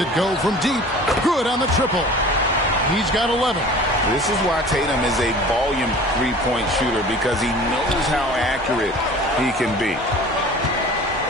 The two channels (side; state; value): both; normal; correlation 0.43